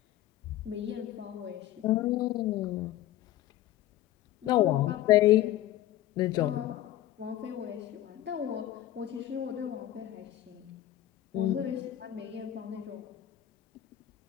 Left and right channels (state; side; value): quieter; right; 13.4 dB